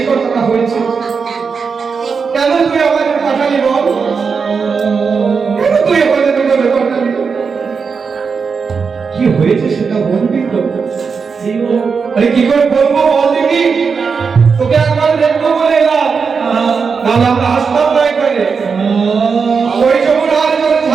কথাটা হয়েছে। কেন তুই আমাদের পাঠালি বল? কেন তুই আমাদের পাঠালি? কি হয়েছে সেটা বলবি তো? আরে কি করে বলবো বল দেখি? তোকে একবার দেখবো বলে এলাম, নাহলে আমরা আসতাম না এখানে। ওই যমুনার জলে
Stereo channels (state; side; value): quieter; left; 5.5 dB